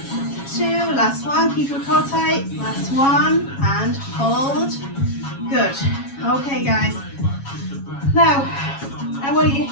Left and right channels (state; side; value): late; right; 7.3 ms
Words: 2, last one, keep your core tight, last one, and hold. Good. Okay, guys. Now, I want your